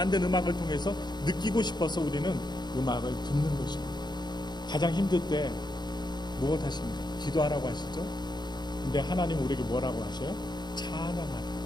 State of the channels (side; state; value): right; late; 0.21 ms